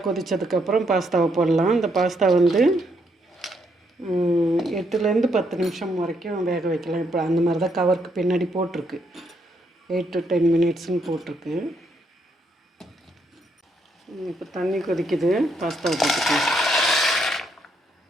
கொதித்ததுக்கப்புறம் பாஸ்தாவை போடலாம். இந்த பாஸ்தா 8லேருந்து 10 நிமிஷம் வரைக்கும் வேக வைக்கலாம். இப்போ அந்த மாதிரி தான் கவருக்கு பின்னாடி போட்டிருக்கு. 8 to 10 மினிட்ஸ்னு போட்டிருக்கு. இப்போ தண்ணி கொதிக்குது, பாஸ்தாவை போட்டுக்கலாம்.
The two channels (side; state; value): both; normal; correlation 0.75